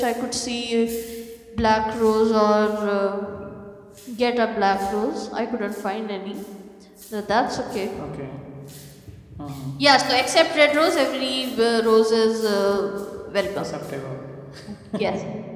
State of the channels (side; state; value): both; identical; correlation 1.00